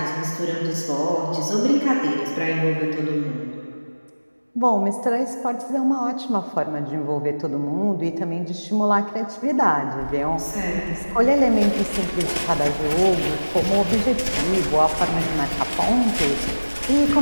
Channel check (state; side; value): inverted; both; correlation -1.00